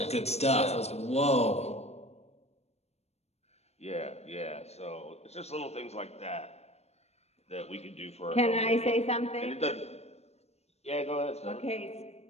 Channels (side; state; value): right; late; 0.31 ms